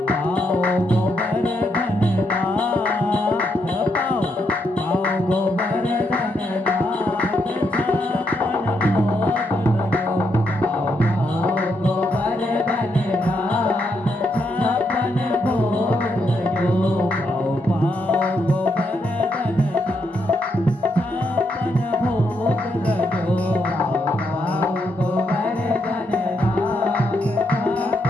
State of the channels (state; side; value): normal; both; correlation 0.78